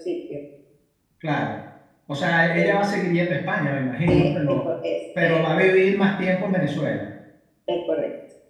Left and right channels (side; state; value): both; identical; correlation 1.00